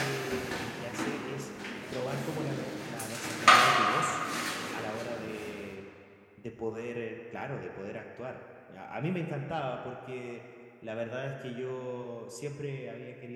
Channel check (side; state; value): both; identical; correlation 1.00